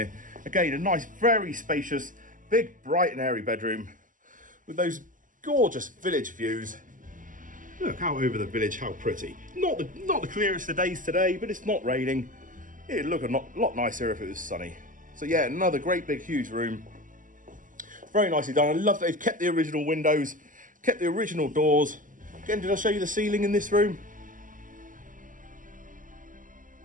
Again, a nice, very spacious, big, bright and airy bedroom with those gorgeous village views. Look out over the village, how pretty. Not the clearest of days today, but it's not raining. It'd look a lot nicer if it was sunny. So yeah, another great big huge room. Very nicely done. I love that they've kept the original windows, kept the original doors. Again, did I show you the ceiling in this room?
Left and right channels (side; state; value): left; late; 0.38 ms